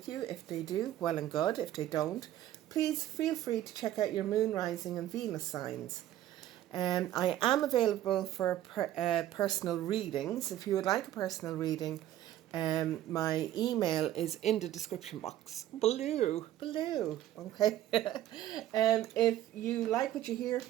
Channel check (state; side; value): quieter; left; 12.9 dB